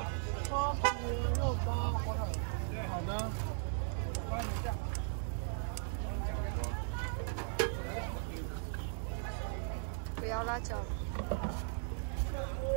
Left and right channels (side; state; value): left; silent; digital silence